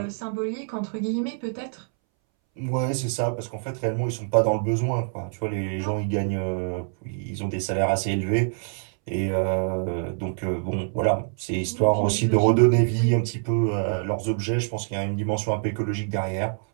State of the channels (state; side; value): silent; left; 61 dB below the other